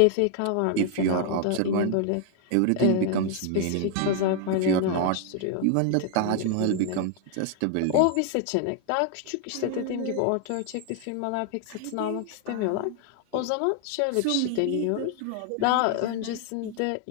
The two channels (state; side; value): different; both; correlation 0.00